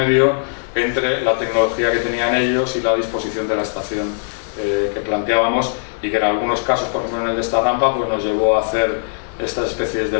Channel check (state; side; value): silent; right; 58 dB below the other